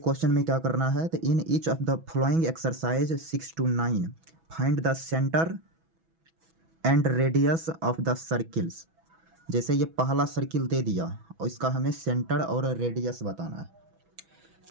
में क्या करना है, तो in each of the following exercise 6 to 9 find the centre and radius of the circles. जैसे ये पहला सर्किल दे दिया और इसका हमें सेंटर और रेडियस बताना है।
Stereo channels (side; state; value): left; late; 6.1 ms